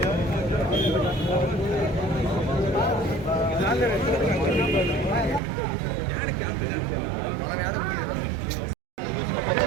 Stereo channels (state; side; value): drops out; left; at 5.4 s